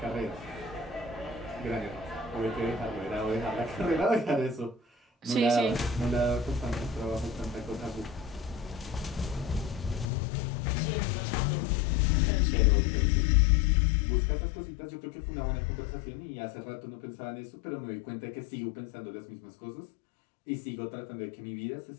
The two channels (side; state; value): right; drops out; at 10.1 s